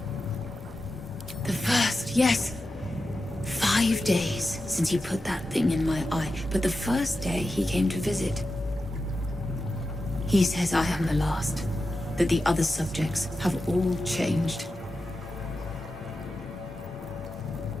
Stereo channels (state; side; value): normal; both; correlation 0.91